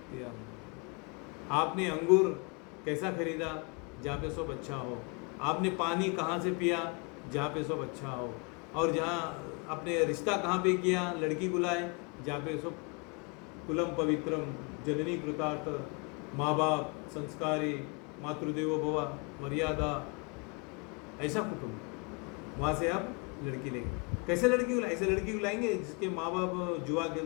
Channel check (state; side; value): quieter; right; 32.7 dB